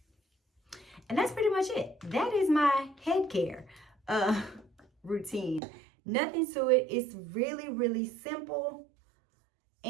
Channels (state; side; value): drops out; left; at 5.6 s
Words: And that's pretty much it. That is my head care routine. Nothing to it. It's really, really simple.